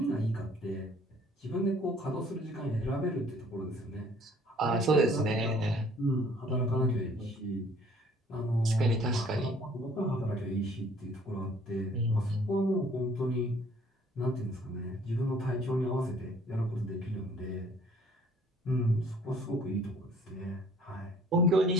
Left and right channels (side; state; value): both; normal; correlation 0.57